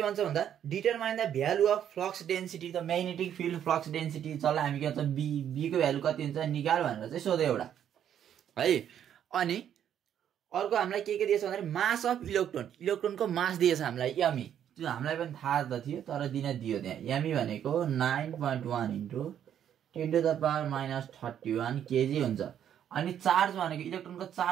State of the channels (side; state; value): left; quieter; 9.7 dB